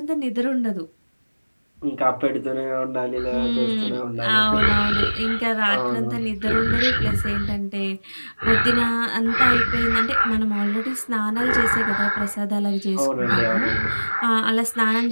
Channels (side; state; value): both; inverted; correlation -1.00